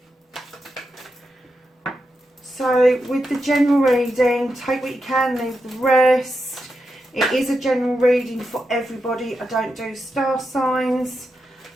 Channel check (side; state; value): both; normal; correlation 0.87